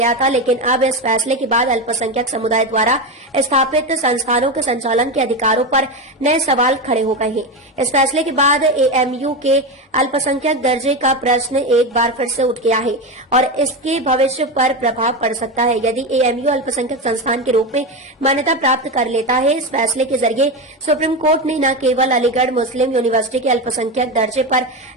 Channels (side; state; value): both; normal; correlation 0.17